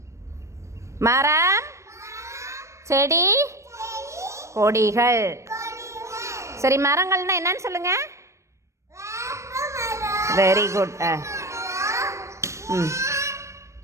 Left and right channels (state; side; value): late; left; 0.14 ms